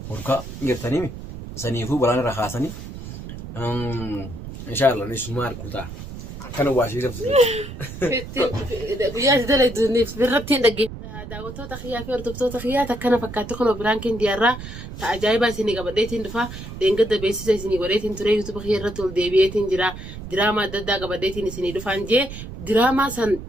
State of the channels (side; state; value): right; noise; rumble, 11 dB below the sound